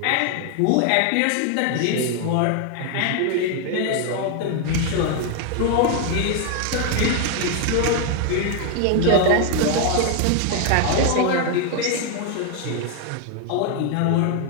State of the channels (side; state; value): both; different; correlation 0.01